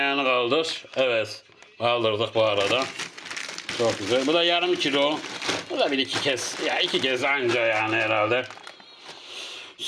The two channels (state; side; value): identical; both; correlation 1.00